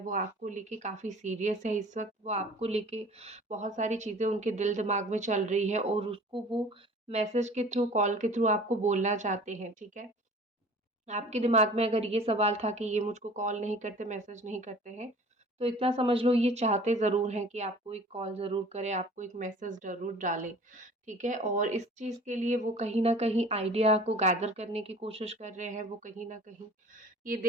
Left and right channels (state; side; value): normal; both; correlation 0.46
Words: आपको लेके काफ़ी सीरियस है इस वक्त। वो आपको लेके बहुत सारी चीज़ें उनके दिल दिमाग में चल रही है और उसको वो मैसेज के थ्रू, कॉल के थ्रू आपको बोलना चाहते हैं, ठीक है। आपके दिमाग में अगर ये सवाल था कि ये मुझको कॉल नहीं करते, मैसेज नहीं करते हैं, तो इतना समझ लो ये चाहते ज़रूर हैं कि आपको एक कॉल ज़रूर करें, आपको एक मैसेज ज़रूर डालें, ठीक है। और इस चीज़ के लिए वो कहीं न कहीं आइडिया को गैदर करने की कोशिश कर रहे हैं। वो कहीं न कहीं ये